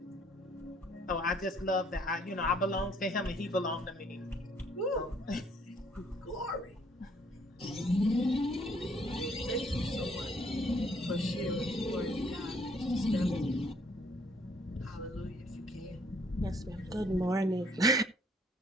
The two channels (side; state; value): both; normal; correlation 0.63